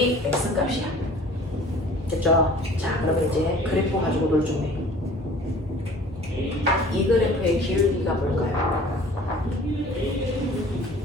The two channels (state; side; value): normal; both; correlation 0.48